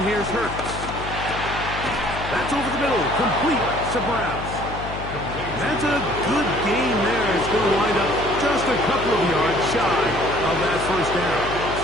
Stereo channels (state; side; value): noise; left; hum, 9 dB below the sound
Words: here's Hurts. That's over the middle, complete to Brown. That's a good game there. It's going to wind up just a couple of yards shy of that first down.